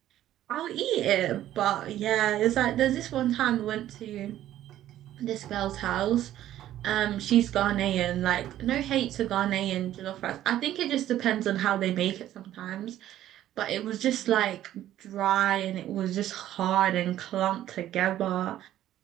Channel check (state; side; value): quieter; left; 12.7 dB